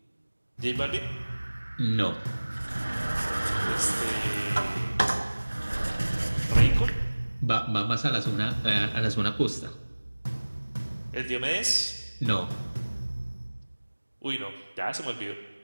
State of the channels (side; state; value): both; inverted; correlation -1.00